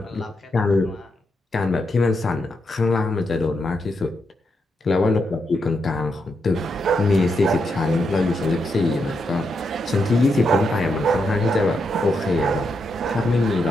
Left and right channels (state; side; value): normal; both; correlation 0.82